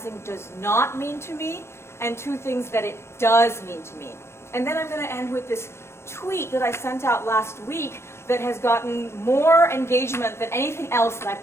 does not mean to me, and two things that it does mean to me. And then I'm going to end with this tweet that I sent out last week that has gotten more engagement than anything else that I've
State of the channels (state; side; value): late; right; 0.13 ms